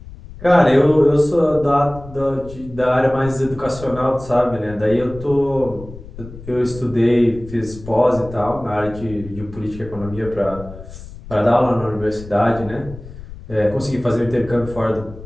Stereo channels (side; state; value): left; noise; rumble, 15 dB below the sound